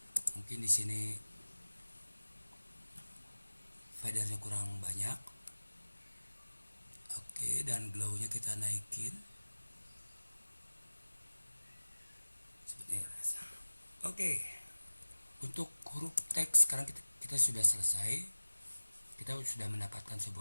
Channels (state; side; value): inverted; both; correlation -1.00